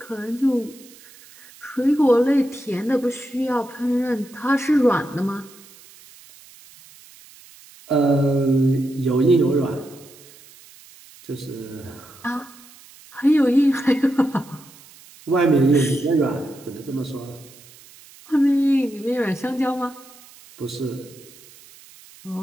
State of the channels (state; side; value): noise; right; hiss, 23 dB below the sound